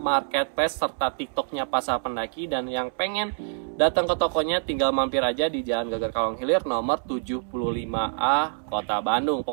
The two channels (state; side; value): silent; left; 61 dB below the other